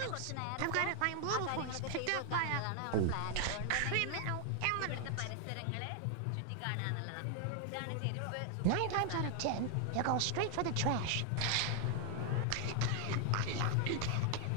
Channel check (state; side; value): different; both; correlation 0.00